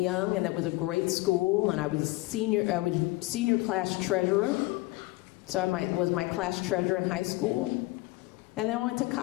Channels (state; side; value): quieter; right; 20.5 dB